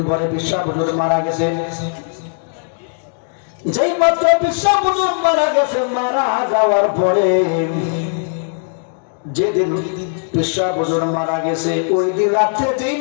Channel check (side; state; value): right; silent; digital silence